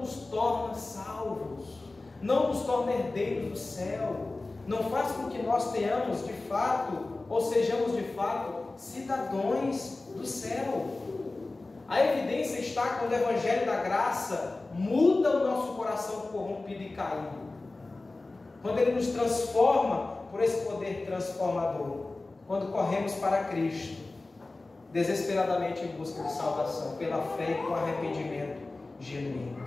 nos torna salvos, não nos torna herdeiros do céu, não faz com que nós tenhamos de fato, ou sejamos de fato, cidadãos do céu. A evidência está quando o Evangelho da Graça muda o nosso coração corrompido e caído, quando ele nos transforma por esse poder transformador, quando corremos para Cristo, desesperadamente em busca de salvação, pela fé e com arrependimento genuíno.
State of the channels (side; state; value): right; quieter; 3.2 dB